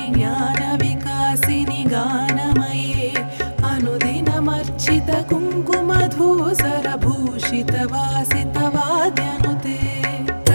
ज्ञानविकासिनि गानमये अनुदिनमर्चित कुङ्कुमधूसरभूषितवासितवाद्यनुते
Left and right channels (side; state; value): both; inverted; correlation -1.00